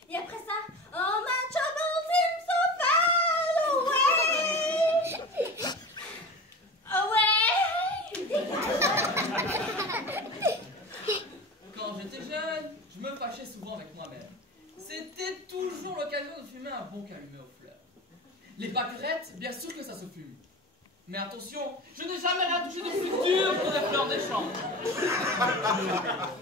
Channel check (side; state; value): both; normal; correlation 0.32